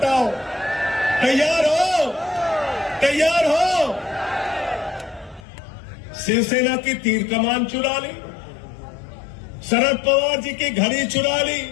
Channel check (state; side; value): drops out; right; at 5.5 s